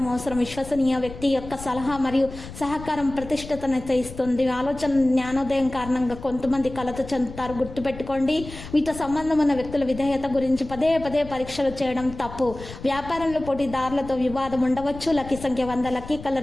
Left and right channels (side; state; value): left; noise; rumble, 13 dB below the sound